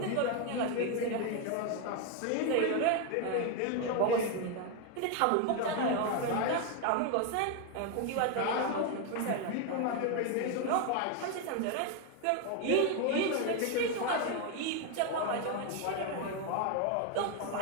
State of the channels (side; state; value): both; different; correlation 0.01